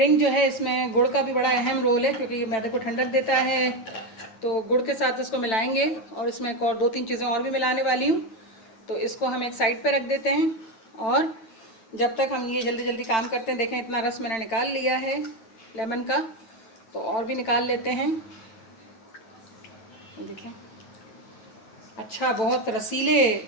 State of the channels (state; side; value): late; right; 9.0 ms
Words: जो है इसमें गुड़ का भी बड़ा अहम रोल है, क्योंकि ये मैदे को ठंडक देता है। तो गुड़ के साथ इसको मिलाएंगे और इसमें एक और 2-3 चीज़ें और भी मिलाने वाली हूँ। तो इसको हम एक साइड पे रख देते हैं और जब तक हम ये जल्दी जल्दी काम करते हैं। देखें इतना रस मैंने निकाल लिया है लेमन का, तो और भी निकाल लेते हैं। देखें अच्छा बहुत रसीले